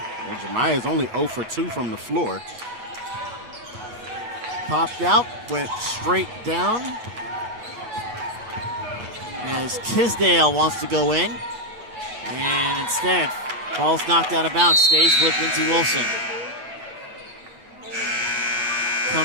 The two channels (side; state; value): left; late; 9.2 ms